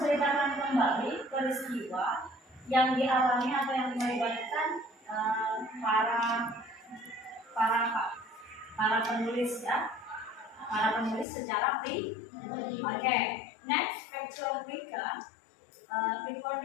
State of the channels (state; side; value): drops out; right; at 11.2 s